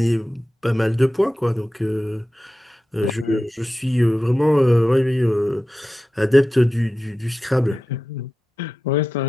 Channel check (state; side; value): normal; both; correlation 0.93